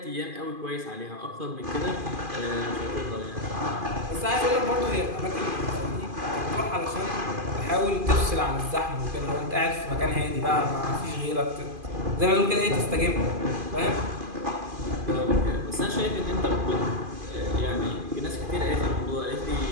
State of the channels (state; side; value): late; left; 2.5 ms